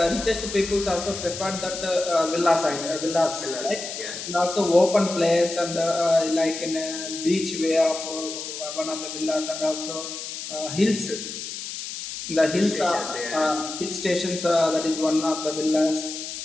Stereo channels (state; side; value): noise; left; hiss, 8 dB below the sound